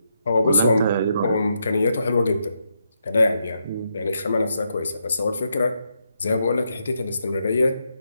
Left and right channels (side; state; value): both; inverted; correlation -0.81